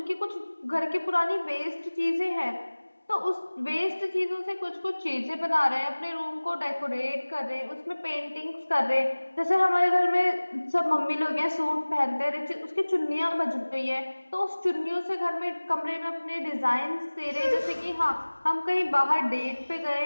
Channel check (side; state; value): both; inverted; correlation -1.00